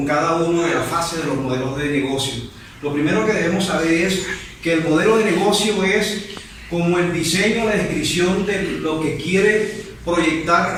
cada uno de las fases de los modelos de negocio. Lo primero que debemos saber es que el modelo de negocio es como el diseño, la descripción de lo que quiere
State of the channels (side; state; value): both; identical; correlation 1.00